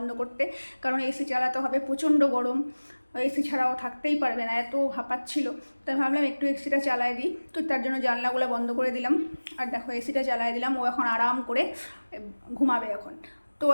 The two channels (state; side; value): inverted; both; correlation -1.00